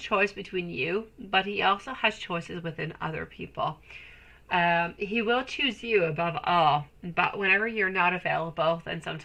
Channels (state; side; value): identical; both; correlation 1.00